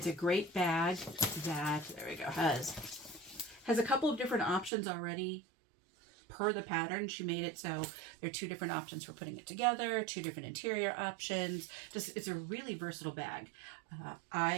a great bag that, there we go, has a couple of different options already per the pattern. She made it so there are two different options for putting it together, two different interior options. It's a really versatile bag.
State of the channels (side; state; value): left; drops out; at 4.7 s